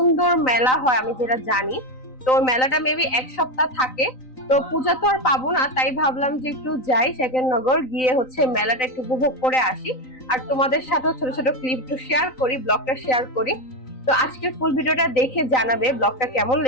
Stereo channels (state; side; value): late; right; 3.9 ms